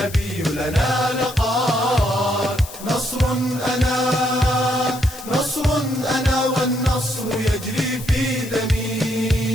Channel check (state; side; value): noise; left; hiss, 15 dB below the sound